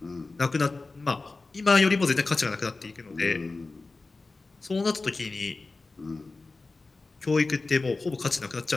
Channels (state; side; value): quieter; right; 3.6 dB